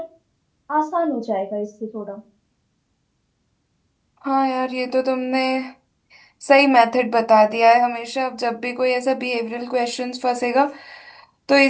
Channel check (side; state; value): both; identical; correlation 1.00